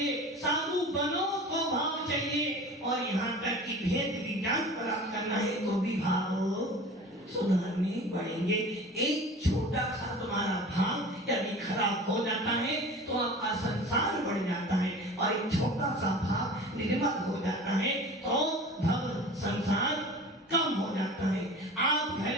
साधु बनो तो भाव चाहिए, और यहाँ तक कि भेद विज्ञान प्राप्त करना है तो भी भाव सुधारने पड़ेंगे। एक छोटा सा तुम्हारा भाव यदि खराब हो जाता है तो आपका संसार बढ़ जाता है, और एक छोटा सा भाव निर्मल हो जाता है तो भव संसार कम हो जाता है। आप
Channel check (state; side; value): normal; both; correlation 0.39